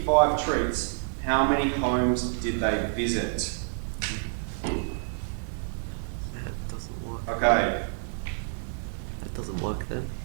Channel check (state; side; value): silent; left; digital silence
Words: treats, how many homes did they visit? That doesn't work. Okay. That doesn't work then,